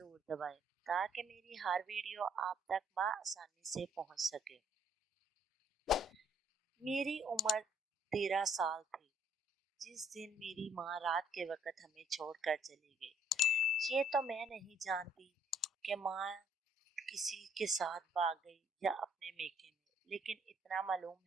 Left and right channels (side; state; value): both; normal; correlation 0.65